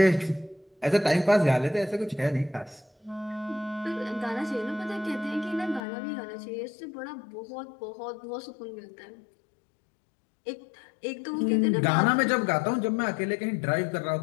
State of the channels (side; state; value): right; drops out; at 5.8 s